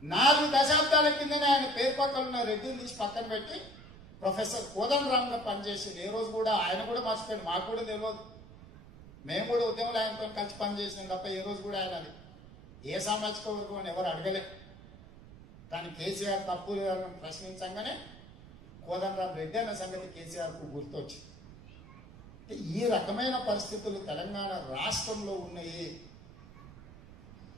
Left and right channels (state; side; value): noise; right; rumble, 18 dB below the sound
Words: 4 దశాబ్దాల కిందనే ఆయన పేరు పక్కన ఉన్న రెడ్డిని తీసి పక్కన పెట్టి ప్రొఫెసర్ కోదండరాం గా పనిచేసింది. ఏ రోజు కూడా ఆయన కూడా మర్చిపోయింది, మాకు కూడా తెలియదు. మేము కూడా ఉద్యమంలో ఆయనతో కలిసి పనిచేసినాం తప్ప ఏ రోజు కూడా ఆయన అది ఏ సామాజిక వర్గం అని ఎవరు అడగలే. కానీ కేసీఆర్ తప్పు లేదని ప్రశ్నించగానే కోదండరాం రెడ్డి అన్న సంగతి కేసీఆర్ కు గుర్తొచ్చింది. ఈ రకమైన పరిస్థితులు తెలంగాణ రాష్ట్రంలో ఉన్నాయి.